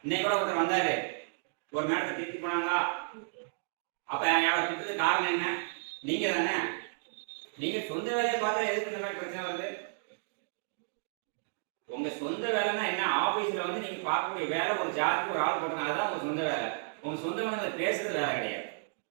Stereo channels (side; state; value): left; silent; digital silence